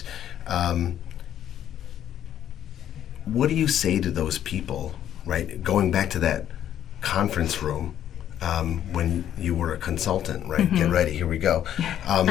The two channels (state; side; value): quieter; right; 10.7 dB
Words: What do you say to those people, right? Going back to that conference room, when you were a consultant, right? Get ready, here we go.